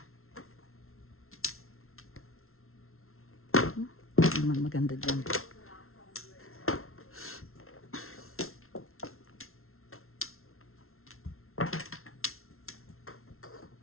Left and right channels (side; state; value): right; late; 0.62 ms